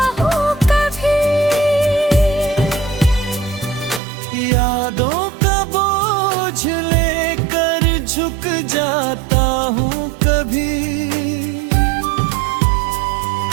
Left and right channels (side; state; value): left; drops out; at 4.0 s